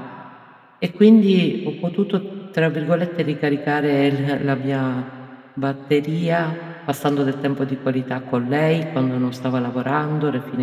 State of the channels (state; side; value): identical; both; correlation 1.00